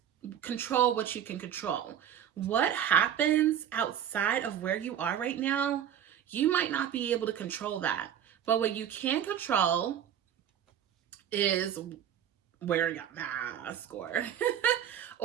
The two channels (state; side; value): quieter; left; 9.6 dB